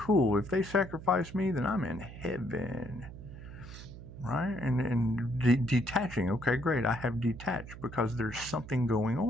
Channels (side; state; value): right; noise; hum, 14 dB below the sound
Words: If they sacrifice me, then I'm in heaven. Right? And detaching. Okay, great. I have detached because there's something going